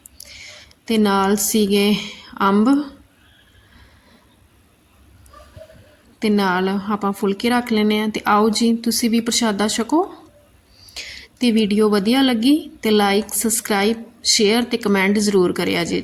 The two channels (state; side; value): identical; both; correlation 1.00